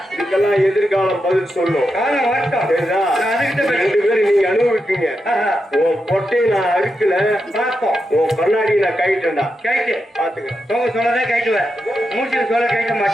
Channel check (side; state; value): both; normal; correlation 0.87